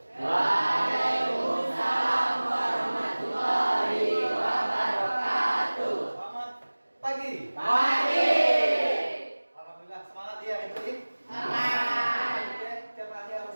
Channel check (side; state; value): both; inverted; correlation -1.00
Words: Waalaikumsalam warahmatullahi wabarakatuh. Selamat pagi. Pagi. Alhamdulillah semangat ya itu ya. Semangat. Oke, tiap hari